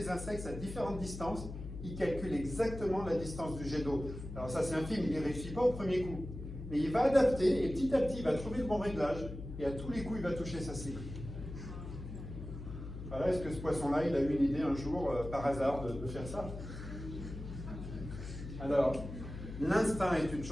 insectes à différentes distances, il calcule exactement la distance du jet d'eau. Alors ça, c'est un film, il n'y réussit pas au premier coup. Mais il va adapter, et petit à petit, il va trouver le bon réglage, et à tous les coups, il va toucher sa cible. Voilà, est-ce que ce poisson-là, il a eu une idée un jour, par hasard, de faire ça? Alors, l'instinct est une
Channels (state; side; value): noise; left; hum, 9 dB below the sound